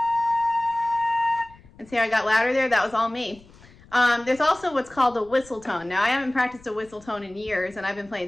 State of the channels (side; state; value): left; noise; rumble, 25 dB below the sound